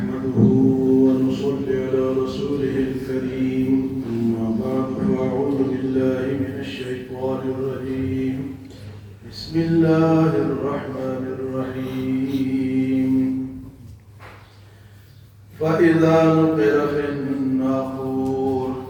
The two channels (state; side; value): identical; both; correlation 1.00